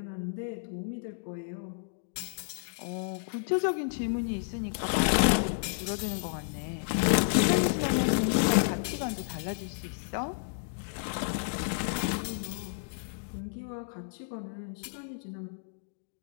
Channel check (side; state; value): right; silent; digital silence